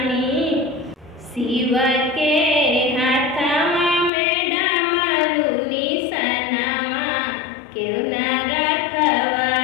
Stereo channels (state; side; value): drops out; right; at 4.1 s